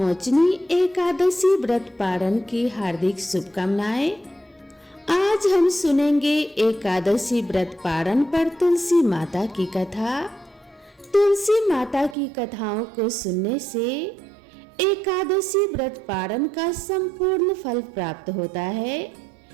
एकादशी व्रत पारण की हार्दिक शुभकामनाएं। आज हम सुनेंगे एकादशी व्रत पारण पर तुलसी माता की कथा। तुलसी माता की कथाओं को सुनने से एकादशी व्रत पारण का संपूर्ण फल प्राप्त होता है,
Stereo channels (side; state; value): left; drops out; at 12.2 s